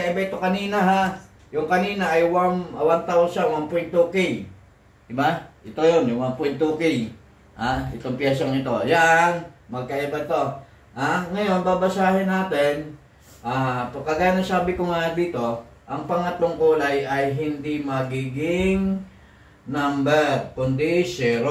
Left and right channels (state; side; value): identical; both; correlation 1.00